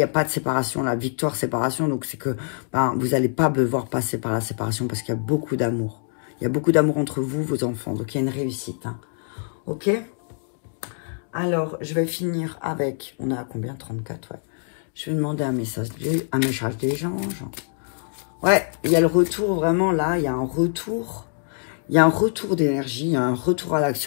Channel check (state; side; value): silent; right; digital silence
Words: a pas de séparation. La victoire, séparation, donc c'est que ben, vous n'allez pas devoir passer par la séparation parce qu'il y a beaucoup d'amour. Il y a beaucoup d'amour entre vous, vos enfants. Donc, il y a une réussite. Hein. Ok? Alors, je vais finir avec... On a combien? 34, ouais. Je vais demander un message des anges. Ouais, il y a le retour, vraiment, là, il y a un retour. Il y a un retour d'énergie, il y a un retour à